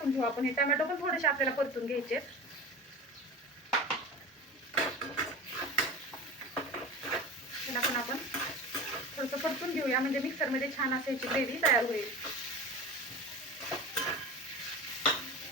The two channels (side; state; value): both; normal; correlation 0.31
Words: घेऊ आपण. हे टोमॅटो पण थोडेसे आपल्याला परतून घ्यायचे. त्याला पण आपण थोडंसं परतून घेऊया, म्हणजे मिक्सरमध्ये छान अशी ग्रेव्ही तयार होईल.